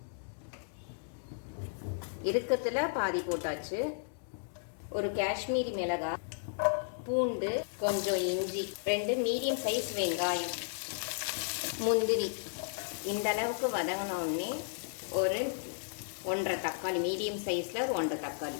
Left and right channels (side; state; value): right; silent; digital silence